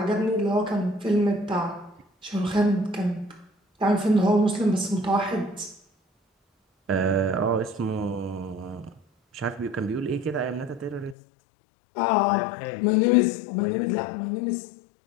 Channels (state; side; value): drops out; right; at 11.2 s